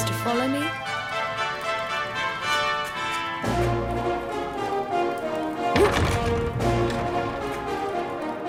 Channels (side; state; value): both; identical; correlation 1.00